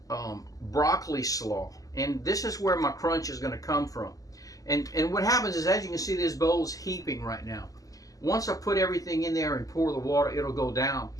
broccoli slaw, and this is where my crunch is going to come from. And what happens is, as you can see, this bowl's heaping right now. once I put everything in there and pour the water, it'll go down.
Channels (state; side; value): late; right; 0.17 ms